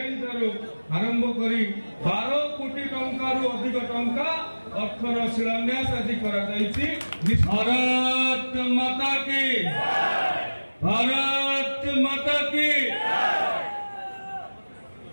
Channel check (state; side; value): inverted; both; correlation -1.00